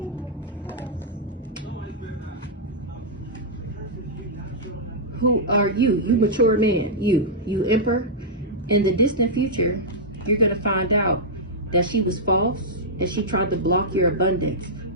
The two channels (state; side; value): normal; both; correlation -0.10